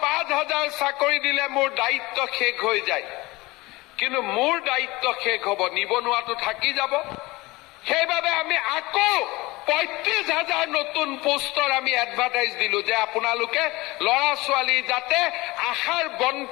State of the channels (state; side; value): quieter; right; 21.5 dB